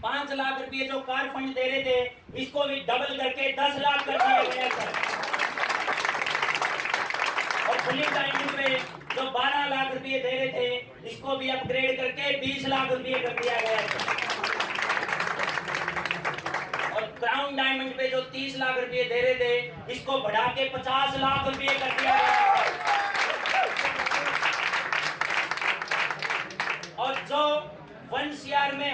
5 लाख रुपये जो कार फंड दे रहे थे, इसको भी डबल करके 10 लाख कर दिया गया सर। और फुली डायमंड पे जो 12 लाख रुपये दे रहे थे, इसको भी अपग्रेड करके 20 लाख रुपये कर दिया गया सर। और क्राउन डायमंड पे जो 30 लाख रुपये दे रहे थे, इसको बढ़ा के 50 लाख रुपये कर दिया गया। और जो 1 CR में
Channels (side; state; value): both; identical; correlation 1.00